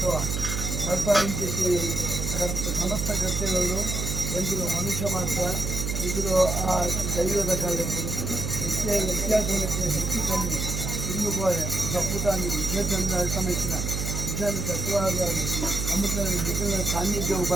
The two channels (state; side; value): noise; right; hum, 2 dB below the sound